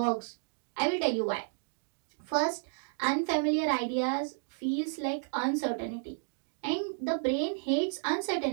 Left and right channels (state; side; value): silent; left; digital silence